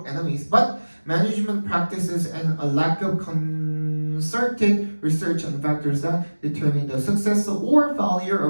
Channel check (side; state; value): both; inverted; correlation -1.00